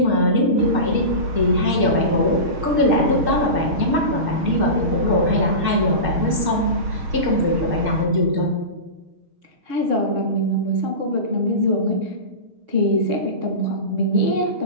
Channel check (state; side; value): late; left; 6.4 ms